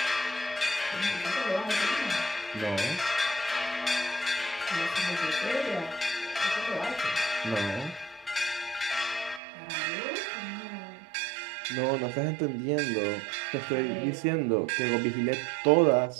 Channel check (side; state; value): left; drops out; at 9.4 s